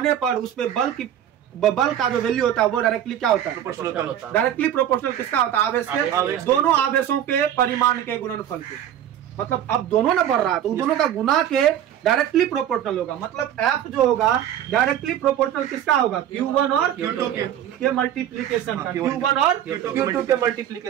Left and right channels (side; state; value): left; quieter; 10.6 dB